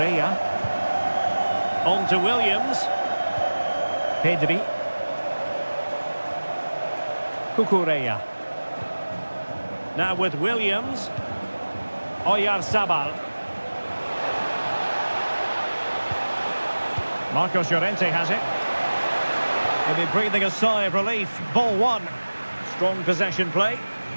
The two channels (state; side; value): inverted; both; correlation -1.00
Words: On to Williams. Pedri. Cucurella. Now with Williams. Oyarzabal. Marcos Llorente has it. He'll be breathing a sigh of relief. Ball one. Strong possession play.